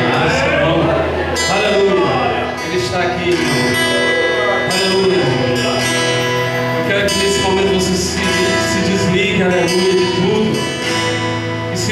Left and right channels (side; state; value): both; identical; correlation 1.00